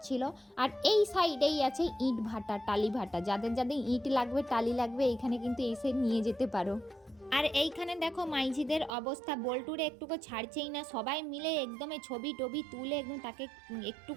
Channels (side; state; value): left; drops out; at 8.9 s